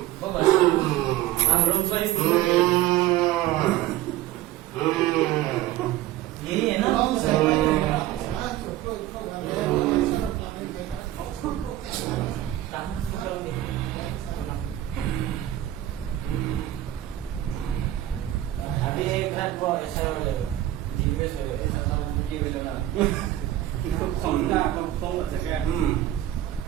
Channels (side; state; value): left; quieter; 14.0 dB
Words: यही है ना? अभी एक रात वो ऐसा हो जाएगा, जिनमें से ऐसा मुझे भी लेना, इसको खोलना अपन खोल सकते हैं।